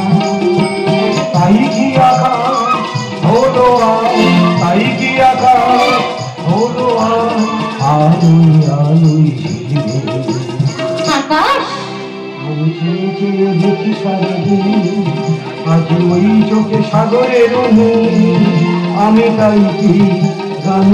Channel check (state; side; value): identical; both; correlation 1.00